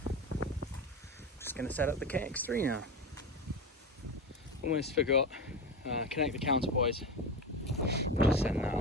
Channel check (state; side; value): normal; both; correlation 0.22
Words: just going to set up the KX3 now. Almost forgot, connect the counterpoise. Just setting that